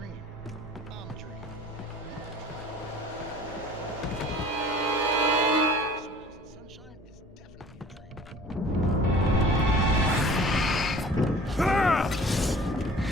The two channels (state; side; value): normal; both; correlation 0.47